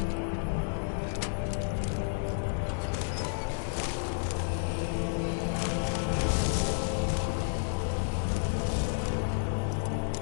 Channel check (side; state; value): right; silent; digital silence